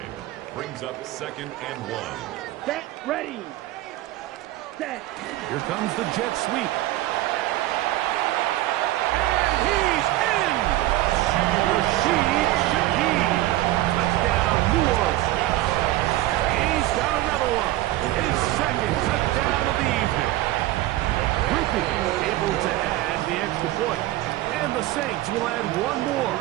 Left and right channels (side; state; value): left; quieter; 16.1 dB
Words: Brings up 2nd and 1. Set. Ready. Set. Here comes the jet sweep. And he's in! Rashid Shaheed. Touchdown, New Orleans. He's got another one. His 2nd touchdown of the evening. Rupi able to add the extra point. And the Saints will add one more